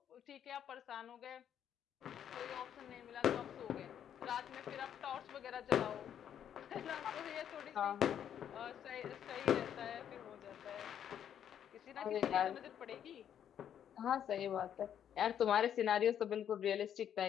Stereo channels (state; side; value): quieter; right; 9.4 dB